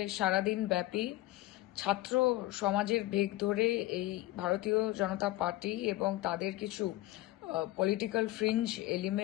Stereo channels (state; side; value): quieter; right; 17.2 dB